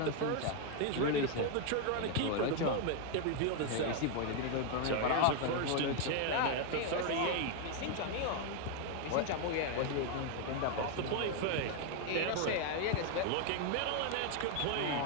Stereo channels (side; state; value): both; different; correlation 0.01